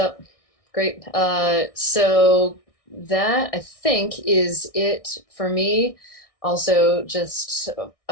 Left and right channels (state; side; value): late; right; 1.6 ms